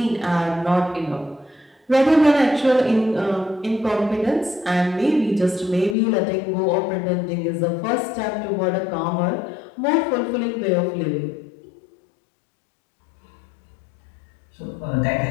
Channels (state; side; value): drops out; right; at 6.0 s